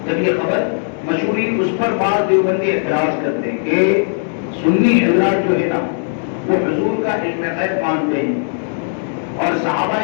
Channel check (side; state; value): right; silent; 63 dB below the other